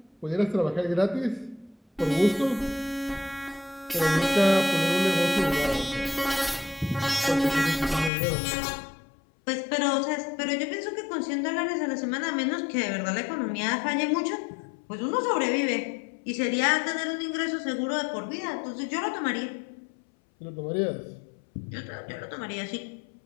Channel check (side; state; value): right; drops out; at 8.1 s